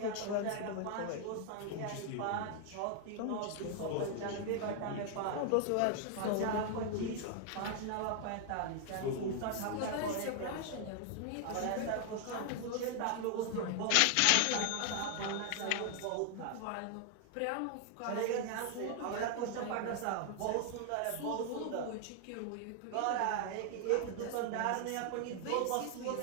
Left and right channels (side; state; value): both; different; correlation 0.00